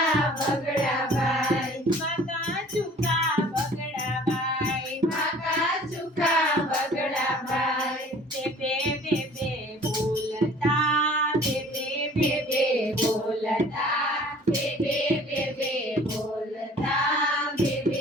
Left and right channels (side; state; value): both; normal; correlation 0.50